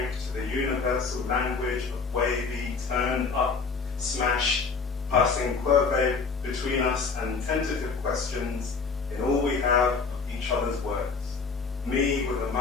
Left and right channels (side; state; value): right; quieter; 4.9 dB